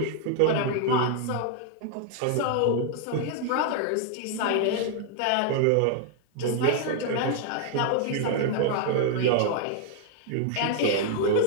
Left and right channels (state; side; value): different; both; correlation 0.00